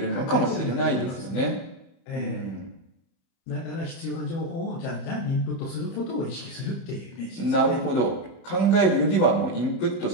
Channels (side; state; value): right; late; 30 ms